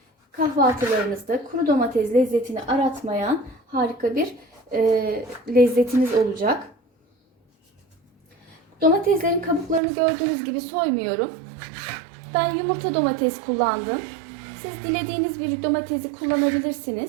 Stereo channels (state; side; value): drops out; left; at 9.8 s